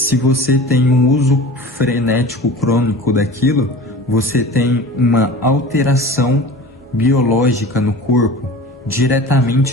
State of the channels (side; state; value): both; normal; correlation 0.38